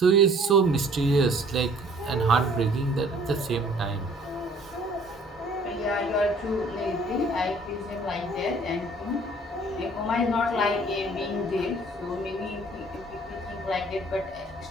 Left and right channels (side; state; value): both; normal; correlation 0.55